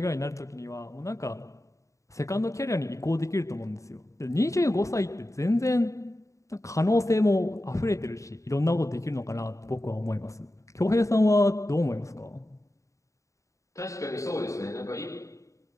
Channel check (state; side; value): late; right; 0.15 ms